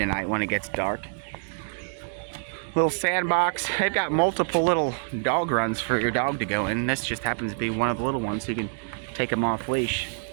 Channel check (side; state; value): left; silent; digital silence